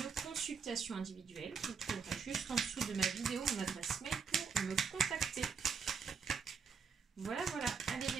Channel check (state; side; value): quieter; left; 5.9 dB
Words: consultation individuelle, vous trouverez juste en dessous de ma vidéo mon adresse mail pour me contacter. Voilà. Allez